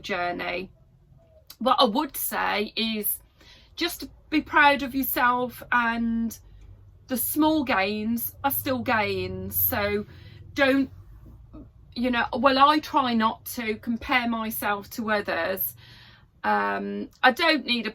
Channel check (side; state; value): both; identical; correlation 1.00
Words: What I would say is just to be proud of yourself, and the small gains are still gains. So don't, I try not to compare myself to others. I don't need a